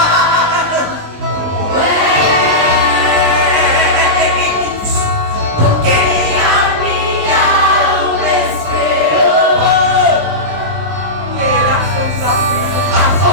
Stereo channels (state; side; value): late; left; 19 ms